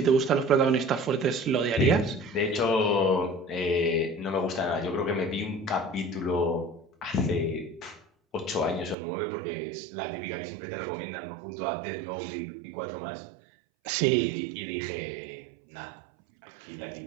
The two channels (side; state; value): left; drops out; at 9.0 s